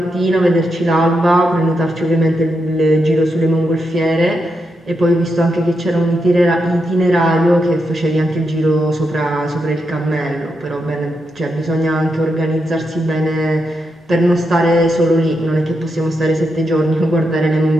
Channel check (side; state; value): both; normal; correlation 0.84